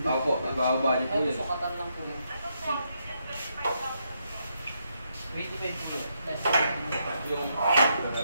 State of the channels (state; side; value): inverted; both; correlation -0.78